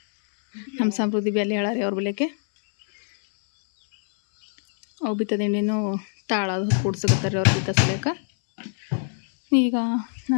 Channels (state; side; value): silent; right; 63 dB below the other